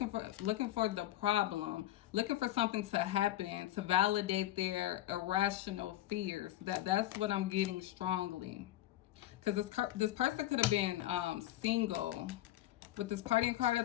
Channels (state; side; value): quieter; right; 14.5 dB